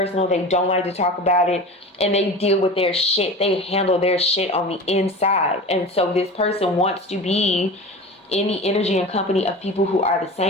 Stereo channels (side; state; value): both; normal; correlation 0.33